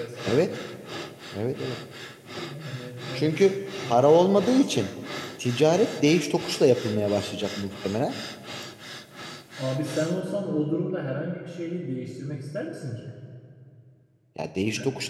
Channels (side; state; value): both; identical; correlation 1.00